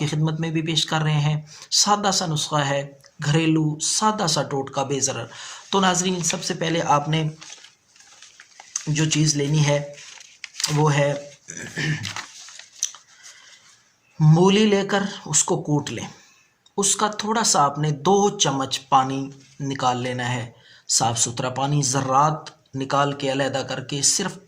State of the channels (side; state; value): both; identical; correlation 1.00